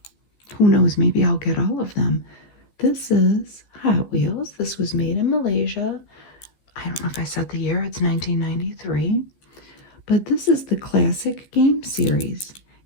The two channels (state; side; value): late; right; 14 ms